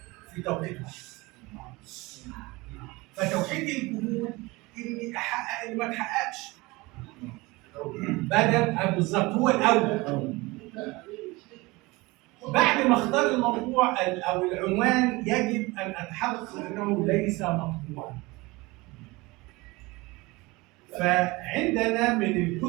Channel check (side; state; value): left; quieter; 22.8 dB